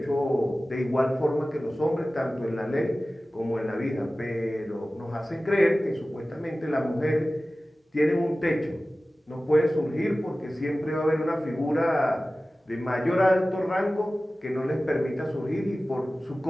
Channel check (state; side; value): normal; both; correlation 0.96